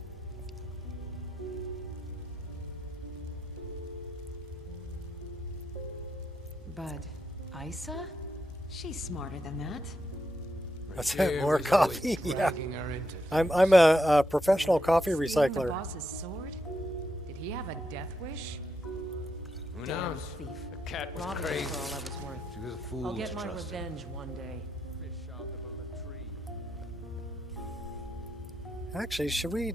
Bud, Isa? She's smarter than that. That's Here it, more was always coffee. Yeah. dragging her into I'm a professional coffee Stealing the recycler. boss's sword? Did he have a death wish? Who Damn knows? thief. The cat was Robbed me crazy. for all I was worth. She was a fool I'll to get my trust. revenge one day. Fish out of a latrine. Actually, should we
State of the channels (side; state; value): both; normal; correlation 0.82